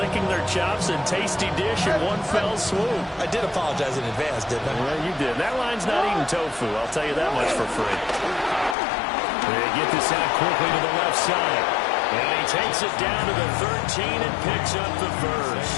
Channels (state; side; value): drops out; right; at 8.8 s